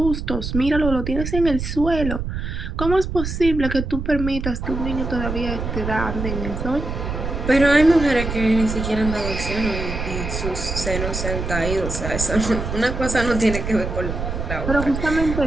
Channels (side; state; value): right; noise; rumble, 4 dB below the sound